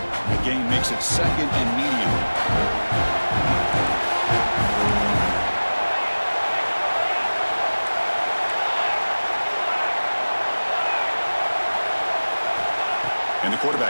The gain makes it 2nd and medium. And the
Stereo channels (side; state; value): both; inverted; correlation -1.00